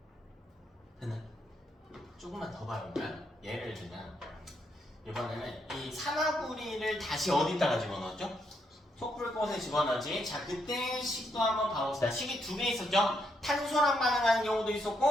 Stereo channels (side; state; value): both; normal; correlation 0.77